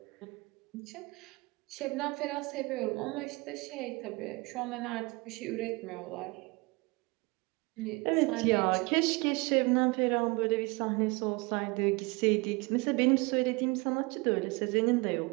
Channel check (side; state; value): left; quieter; 26.6 dB